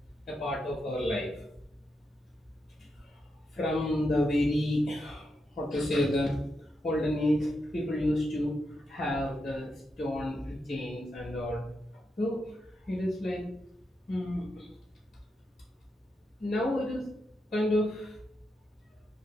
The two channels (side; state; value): both; normal; correlation 0.84